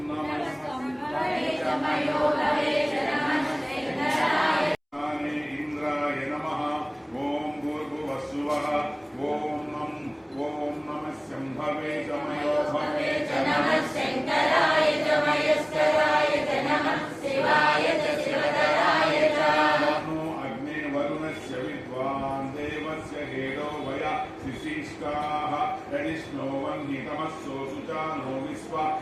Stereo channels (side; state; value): both; identical; correlation 1.00